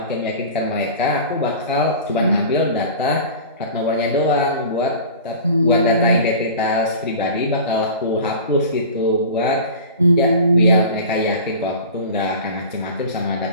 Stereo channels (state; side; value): inverted; both; correlation -0.37